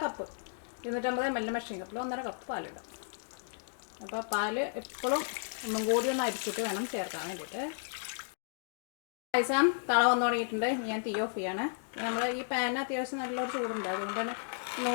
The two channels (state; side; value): silent; right; digital silence